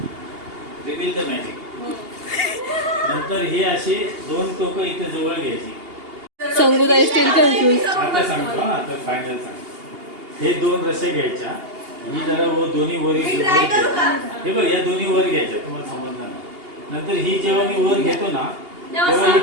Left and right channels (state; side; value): late; left; 2.8 ms